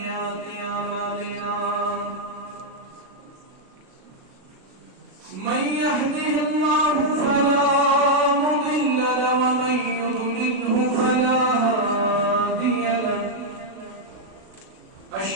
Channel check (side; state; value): left; late; 36 ms